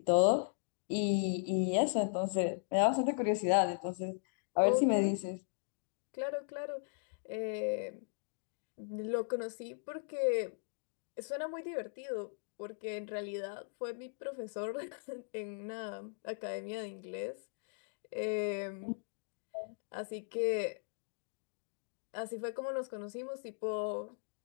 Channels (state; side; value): silent; right; digital silence